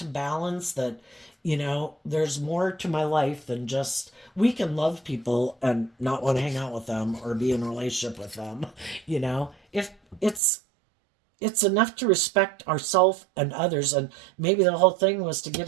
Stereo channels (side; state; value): left; drops out; at 10.4 s